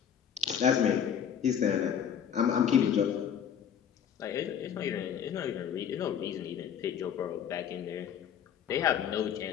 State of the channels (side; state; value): right; quieter; 8.6 dB